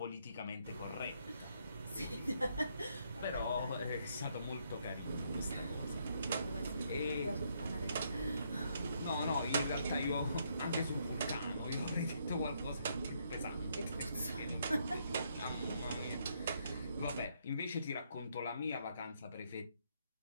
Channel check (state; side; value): inverted; both; correlation -0.73